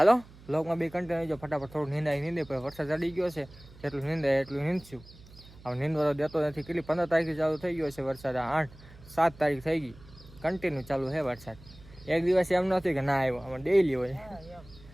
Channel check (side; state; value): right; noise; hum, 21 dB below the sound